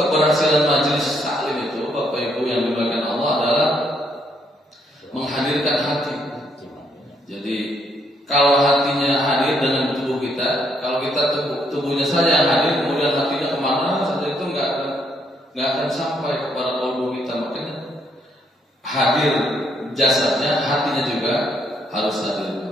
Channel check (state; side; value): normal; both; correlation 0.72